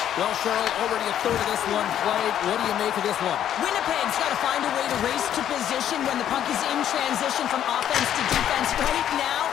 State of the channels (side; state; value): right; quieter; 10.5 dB